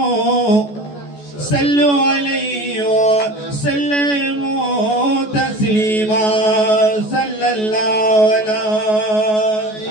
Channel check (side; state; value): right; late; 14 ms